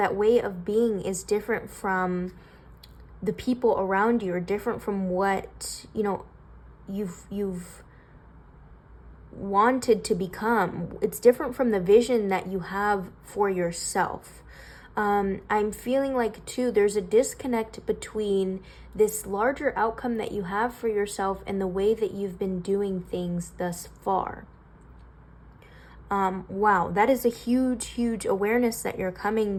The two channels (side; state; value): both; identical; correlation 1.00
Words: way of being is different from the people around you, are different from what, you know, you've wanted to become. It's different from the vision that you have for yourself. I'm feeling like too, there's a disconnect between this larger outcome that you have for yourself and the way that you've been doing things thus far. Wow, that is a huge awareness that you're